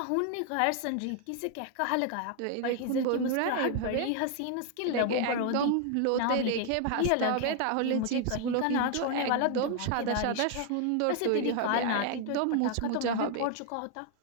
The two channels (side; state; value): both; different; correlation 0.00